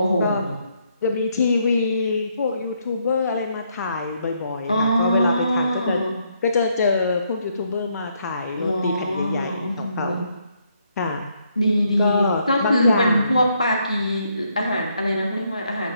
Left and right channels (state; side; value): inverted; both; correlation -0.74